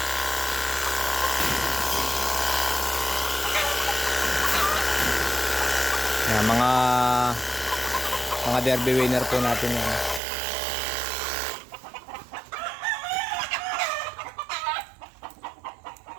Yan, mga derby winner po natin yan.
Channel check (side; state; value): left; drops out; at 10.2 s